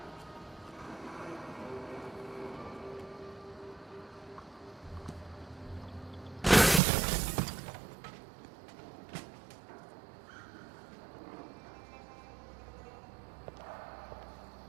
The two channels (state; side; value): drops out; left; at 6.8 s